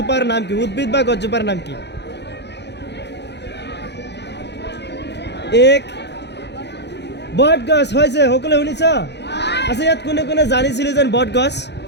নাম কি? উদ্ভিদ বা গছজোপাৰ নাম কি? এক বট গছ হৈছে। সকলোৱে শুনিছ? আচ্ছা, ইয়াত কোনে কোনে জানিছিলে যেন বট গছ?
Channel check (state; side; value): late; right; 0.50 ms